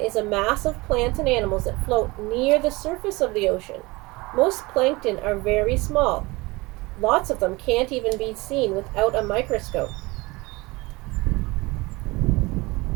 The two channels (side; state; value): left; quieter; 23.2 dB